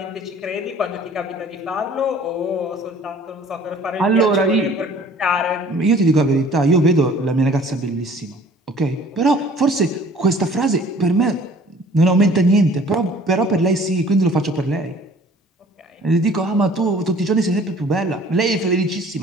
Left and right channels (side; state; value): both; normal; correlation 0.51